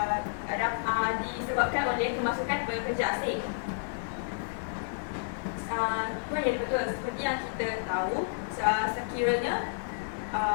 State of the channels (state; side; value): silent; right; 57 dB below the other